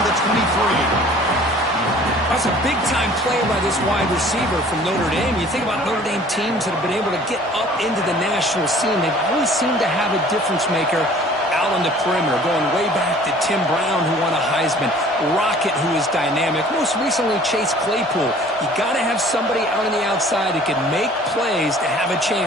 the 23. That's a big-time play by this wide receiver from Notre Dame. You think about Notre Dame teams that have been able to get up into the national scene. They've always seemed to have a difference maker out on the perimeter, going way back to Tim Brown, who won a Heisman, Rocket, who is dynamic, most recently Chase Claypool. You got to have somebody out on the outside that can make plays to have a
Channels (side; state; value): both; normal; correlation 0.51